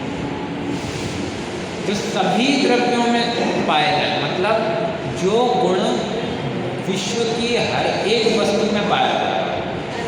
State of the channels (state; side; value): identical; both; correlation 1.00